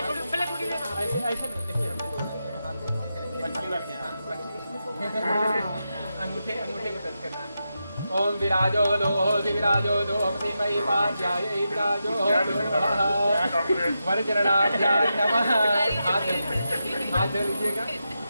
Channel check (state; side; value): inverted; both; correlation -0.88